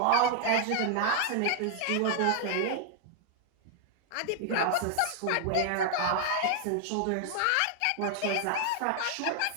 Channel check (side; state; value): both; different; correlation 0.00